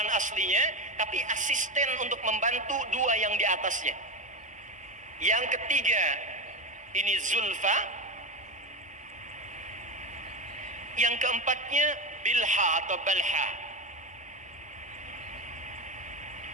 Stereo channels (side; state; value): both; normal; correlation 0.16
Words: aslinya, tapi asisten untuk membantu 2 yang di atasnya. Yang ketiga ini Zulfa. Yang keempatnya Bilha atau Balha.